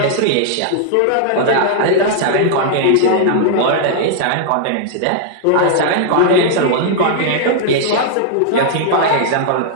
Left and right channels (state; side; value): different; both; correlation -0.01